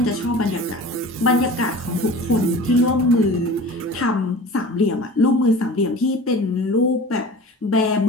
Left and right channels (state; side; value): normal; both; correlation 0.39